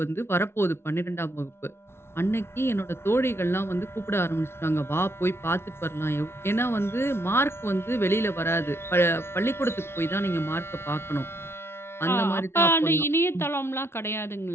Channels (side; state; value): right; late; 0.12 ms